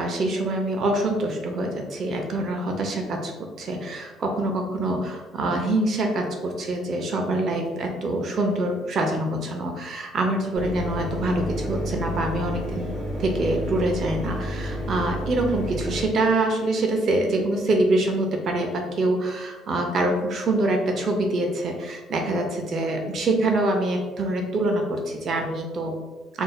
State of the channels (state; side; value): normal; both; correlation 0.68